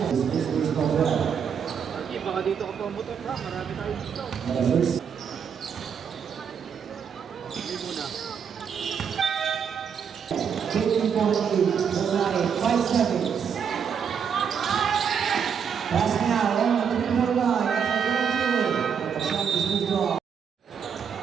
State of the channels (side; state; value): left; quieter; 7.2 dB